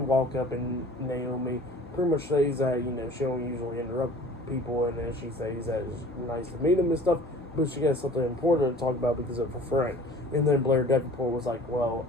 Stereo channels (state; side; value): normal; both; correlation 0.46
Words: up, and Naomi pretty much says that, she don't usually interrupt people. And then she says that it's nice to meet him and stuff. But she got something important to talk about because of her friend. And then Blair Davenport was like, well,